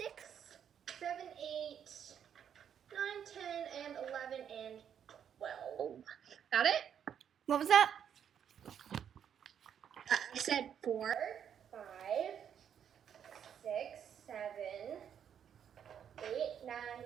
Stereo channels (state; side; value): quieter; left; 8.6 dB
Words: 7, 8, 9, 10, and 11, and 12. Got it? What was that? I said 4, 5, 6, 7, 8, 9,